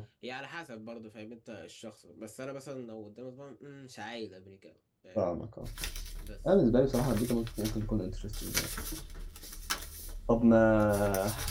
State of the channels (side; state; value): both; identical; correlation 1.00